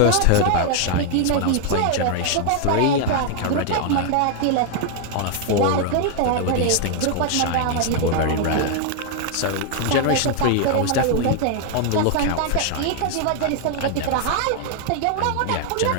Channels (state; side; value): different; both; correlation 0.00